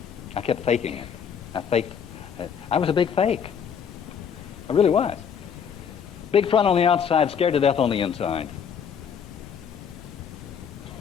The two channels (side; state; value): right; quieter; 7.4 dB